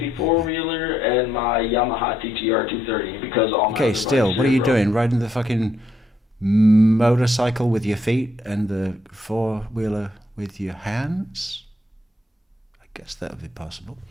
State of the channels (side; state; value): both; normal; correlation 0.74